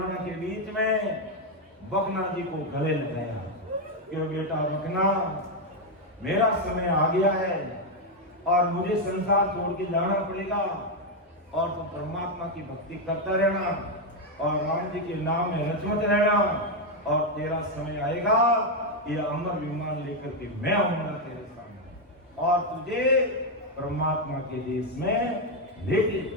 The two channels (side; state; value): both; normal; correlation 0.03